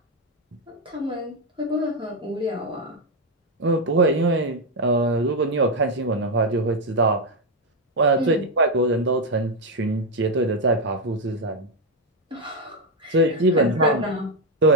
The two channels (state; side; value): normal; both; correlation 0.03